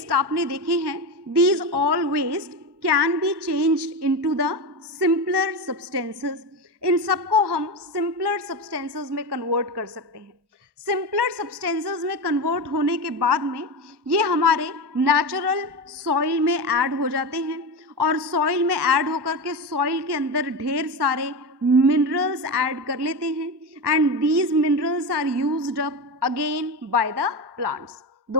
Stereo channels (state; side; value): late; left; 1.1 ms